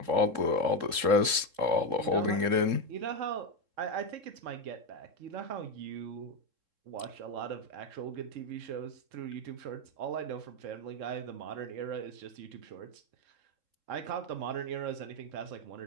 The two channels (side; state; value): left; late; 3.7 ms